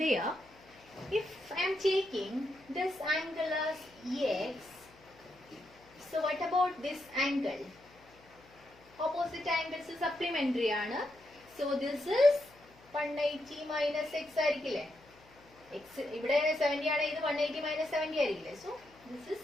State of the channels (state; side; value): noise; left; hum, 27 dB below the sound